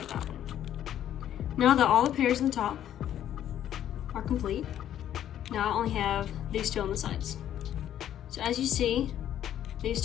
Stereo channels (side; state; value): right; quieter; 11.0 dB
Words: that one. Now that all the pairs in the top are complete, now I only have these 2 on the sides. So as you see, these